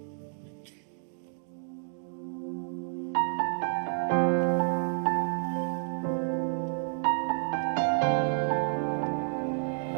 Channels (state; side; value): silent; left; digital silence